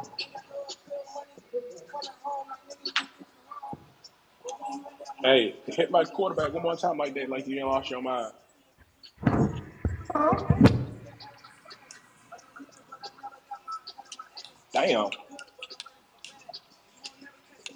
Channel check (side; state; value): both; identical; correlation 1.00